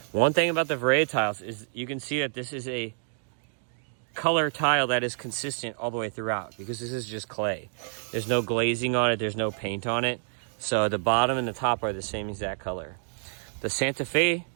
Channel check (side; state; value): left; silent; digital silence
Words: One thing about the Verea tiles is you can see that this is a color tile that is consistent all the way throughout, because this is just clay. There's no glazing on it, there's no paint on it. So the bottom and the top are the same exact color. The Santa Fe